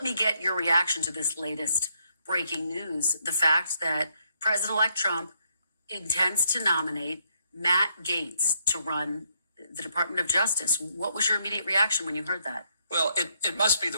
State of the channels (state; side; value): inverted; both; correlation -0.75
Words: me get your reaction to this latest breaking news. The fact that President-elect Trump intends to nominate Matt Gaetz to run the Department of Justice. What was your immediate reaction when you heard that? Well, it must be